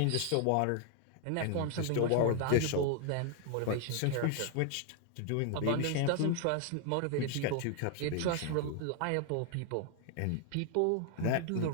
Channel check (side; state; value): both; different; correlation 0.00